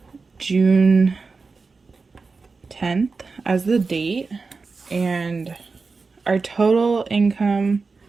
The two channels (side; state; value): left; quieter; 4.3 dB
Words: June 10th as the date, and our total income